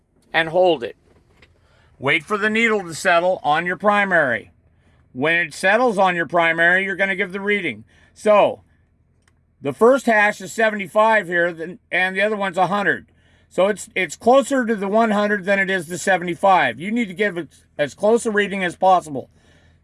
and hold it. Wait for the needle to settle on your primary. When it settles on your primary, you're going to give the reading. So, the first hash is 75 here, and the other one's 100. So it's closer to the 100 than it is the 75. You need to give it as close a reading as possible.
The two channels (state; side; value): identical; both; correlation 1.00